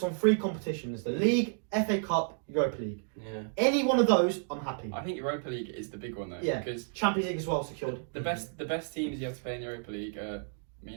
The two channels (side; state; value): left; silent; digital silence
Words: on 3 competitions: the League, FA Cup, Europa League. Yeah. Any one of those, I'm happy. I think Europa League is the big one though. Yeah. Because Champions League as well secured. The best teams you have to play in the Europa League. The